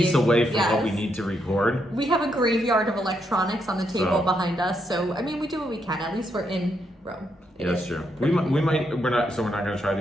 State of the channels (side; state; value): both; normal; correlation 0.78